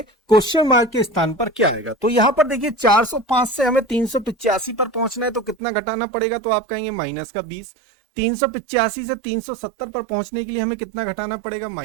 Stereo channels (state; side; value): drops out; left; at 5.6 s